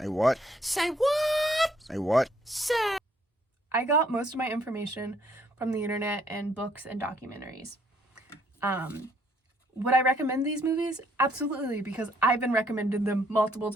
what? Say what? Say what? Say. I got most of my information from the internet and books and documentaries. Would I recommend these movies? Absolutely, because I've been recommended them multiple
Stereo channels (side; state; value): both; normal; correlation 0.67